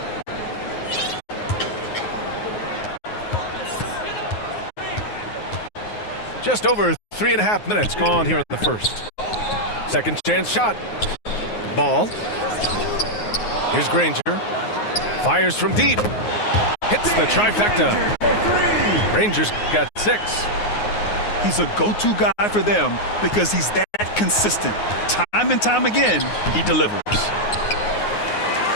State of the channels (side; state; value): right; late; 9.5 ms